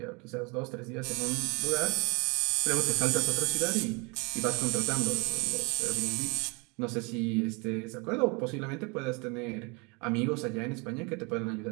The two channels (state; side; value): quieter; left; 30.0 dB